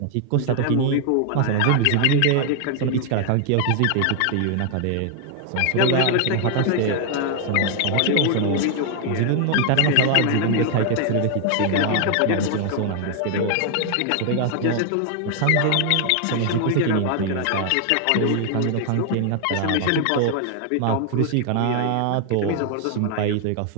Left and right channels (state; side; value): different; both; correlation 0.00